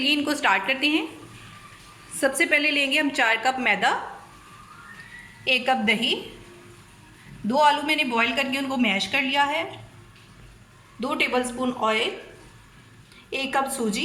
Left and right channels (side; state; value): both; identical; correlation 1.00